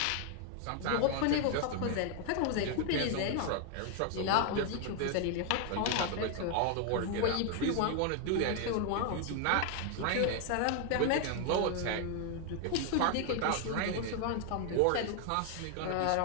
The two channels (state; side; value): different; both; correlation 0.00